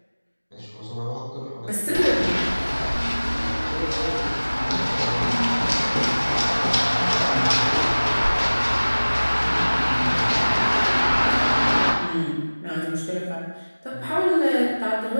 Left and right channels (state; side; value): inverted; both; correlation -1.00